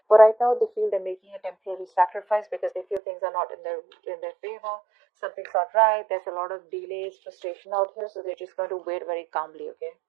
But right now they feel they're making a temporary sacrifice because they feel things are not in their favor. Something's not right. There's a lot of delays, frustration out here, so they're just going to wait very calmly, okay?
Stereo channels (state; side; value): drops out; left; at 3.0 s